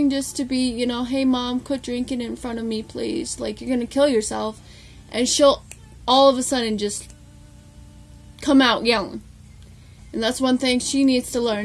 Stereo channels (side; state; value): both; identical; correlation 1.00